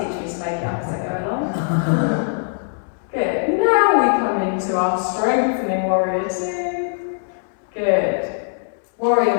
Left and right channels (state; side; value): silent; right; 63 dB below the other